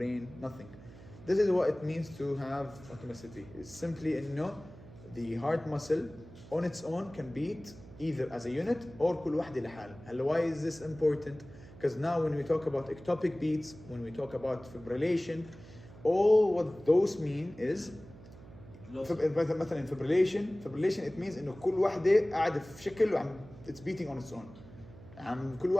Nothing. This is what it means to have automaticity. It's simply إنه the heart muscle on its own can beat either as a unit or كل واحدة لحال. هلا why is this important? Because now when we talk about ectopic beats, when we talk about fibrillation, all what those mean is مثلا fibrillation it means إنه كل واحدة قاعدة في شكل وعم it's beating on its own. كل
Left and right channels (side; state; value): right; noise; hum, 19 dB below the sound